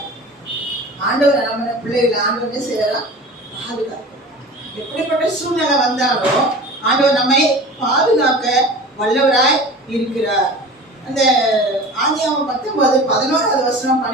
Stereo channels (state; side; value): normal; both; correlation 0.37